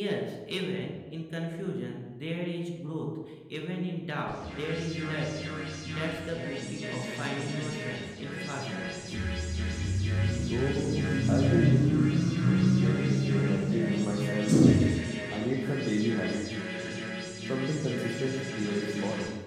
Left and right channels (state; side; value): identical; both; correlation 1.00